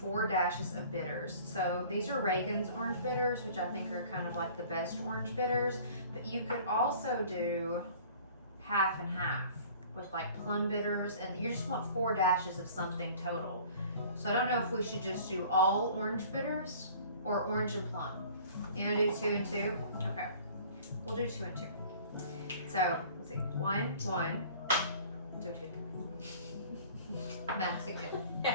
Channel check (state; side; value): inverted; both; correlation -0.48